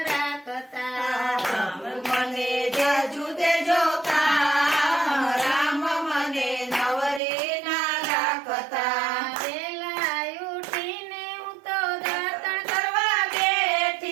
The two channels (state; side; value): drops out; left; at 7.2 s